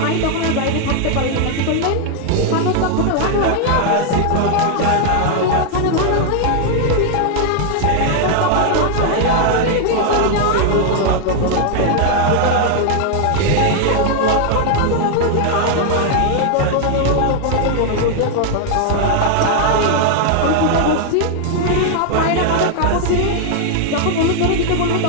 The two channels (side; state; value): both; different; correlation 0.00